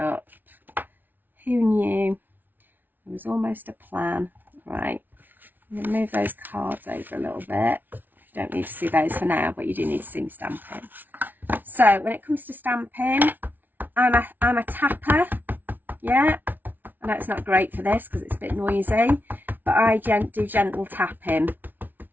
Who knew? It was almost a plan. Right, I'm going to move those cards over a little bit. You don't need to see those for now, but you do need to see me stamping. So when it comes to stamping, I'm a tapper. Yeah, I know it's not great for this because it's a bit noisy, but I do gentle tapping.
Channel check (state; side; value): late; left; 0.087 ms